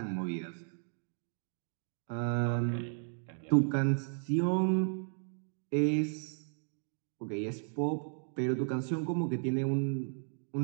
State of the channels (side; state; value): left; silent; 55 dB below the other